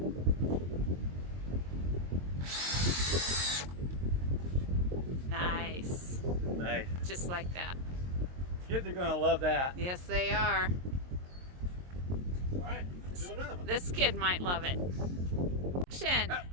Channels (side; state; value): left; late; 22 ms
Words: Nice. Nice. Just like that. Kids are gonna love that. Yes, they are. All right, let's do another one. This kid might love it. Action.